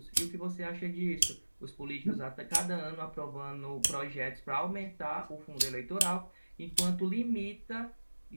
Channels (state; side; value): inverted; both; correlation -1.00